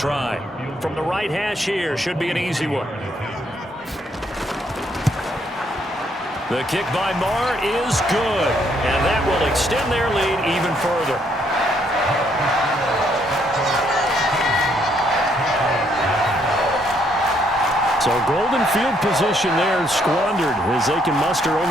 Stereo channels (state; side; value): normal; both; correlation 0.71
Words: From the right hash here, should be an easy one. The kick by Maher is good, and that will extend their lead even further. So golden field position there squandered as they can muster